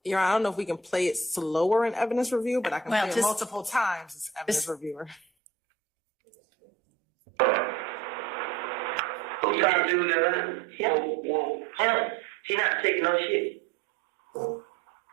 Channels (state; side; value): drops out; left; at 5.2 s